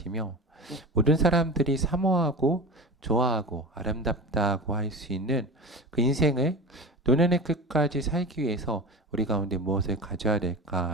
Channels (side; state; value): both; normal; correlation 0.30